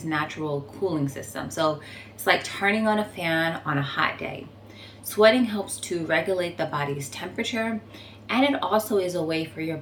natural cooling system. So it's like turning on a fan on a hot day. Sweating helps to regulate the body's temperature, and it also is a way for your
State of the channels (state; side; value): identical; both; correlation 1.00